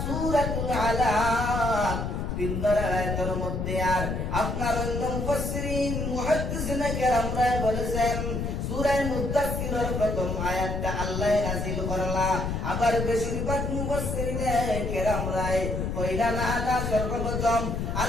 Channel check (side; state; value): left; noise; rumble, 2 dB below the sound